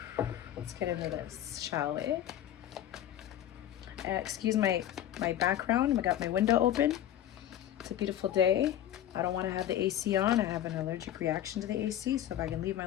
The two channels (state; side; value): quieter; right; 11.5 dB